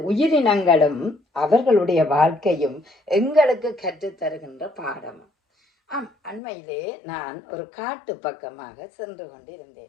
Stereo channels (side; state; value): right; drops out; at 6.4 s